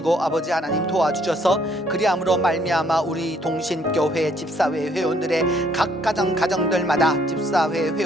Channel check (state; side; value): normal; both; correlation 0.66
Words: 아버지 하나님 도와주셔서 그리함으로 말미암아 우리 동신교회 집사회 회원들의 각 가정들마다 집사회